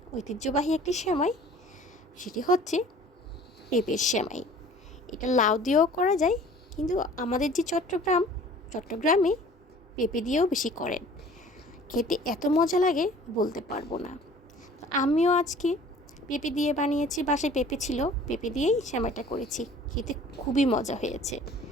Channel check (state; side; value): normal; both; correlation 0.49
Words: ঐতিহ্যবাহী একটি সেমাই, সেটি হচ্ছে পেঁপের সেমাই। এটা লাউ দিয়েও করা যায়, কিন্তু আমাদের যে চট্টগ্রামে পেঁপে দিয়েও বেশি করেন। খেতে এত মজা লাগে বলতে পারবো না। আমিও আজকে পেঁপে দিয়ে বানিয়েছি, বাসায় পেঁপে ছিল, পেঁপে দিয়েই সেমাইটা করেছি। খেতে খুবই মজা হয়েছে।